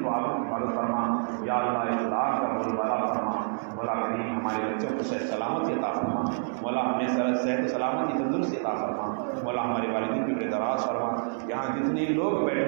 و آبرو کی حفاظت فرما. یا اللہ اسلام کا بول بالا فرما. مولا کریم ہمارے بچوں کو صحت سلامتی عطا فرما. مولا ہمیں صحت و سلامتی تندرستی عطا فرما. مولا ہمارے والدین کی عمر دراز فرما. یہاں جتنے لوگ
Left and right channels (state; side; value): silent; left; digital silence